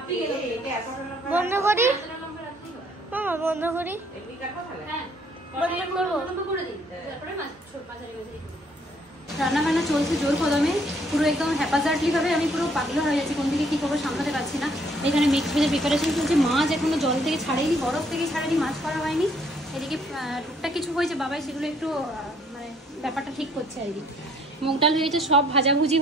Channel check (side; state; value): both; normal; correlation 0.64